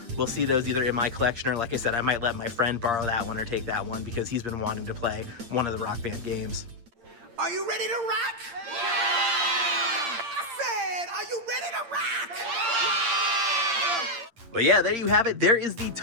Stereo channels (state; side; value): late; left; 8.7 ms